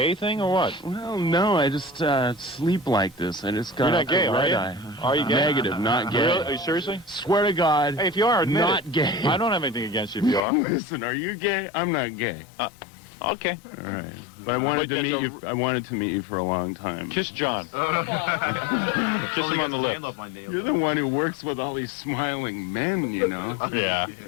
thing or what? Well, no, I just sleep like this. I just got You're not gay, a are red you? eye. Are you gay? Negative, not gay. Really? Are you seriously? Swear to God. Hey, if you are, admit not it. gay. I don't have anything against you if you are. Listen, are you gay? I'm not gay. Okay. All right. But I wanted to meet you. I wanted to meet you for a long time. Kiss John. Kiss him on the lips. You're the one who works with all these smiling men, you know. Yeah,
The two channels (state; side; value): drops out; right; at 10.4 s